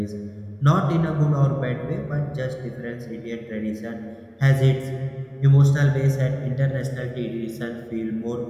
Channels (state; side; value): identical; both; correlation 1.00